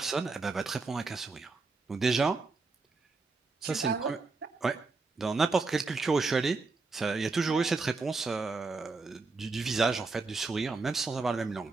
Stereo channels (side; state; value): left; quieter; 4.0 dB